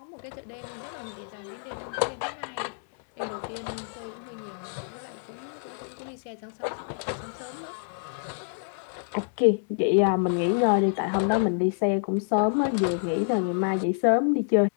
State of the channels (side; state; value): right; silent; digital silence